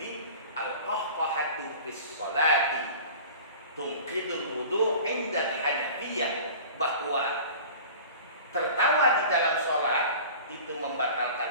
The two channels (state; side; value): inverted; both; correlation -0.40